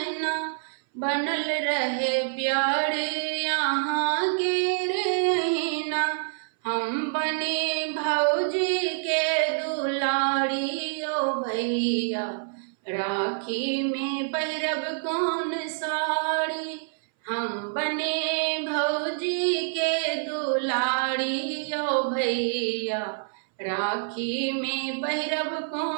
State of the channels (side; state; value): left; silent; 60 dB below the other